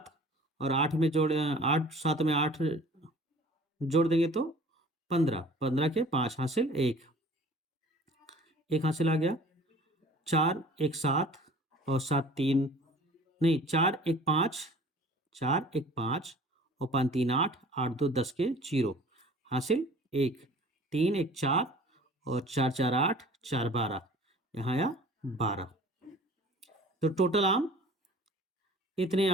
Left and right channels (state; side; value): normal; both; correlation 0.47